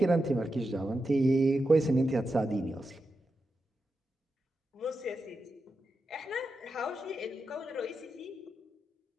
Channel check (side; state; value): both; normal; correlation 0.88